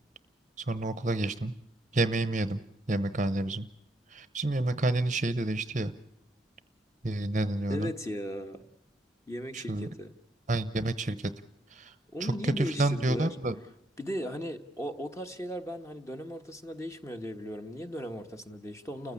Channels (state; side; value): normal; both; correlation 0.75